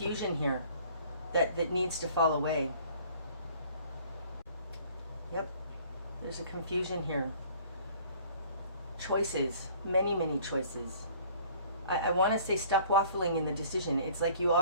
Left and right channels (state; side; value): inverted; both; correlation -0.53